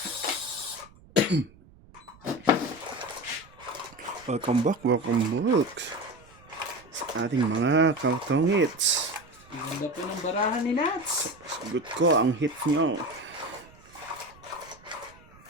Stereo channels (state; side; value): noise; right; rumble, 25 dB below the sound